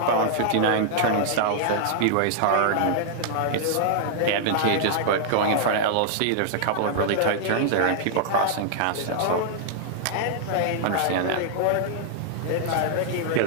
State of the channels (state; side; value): different; both; correlation -0.01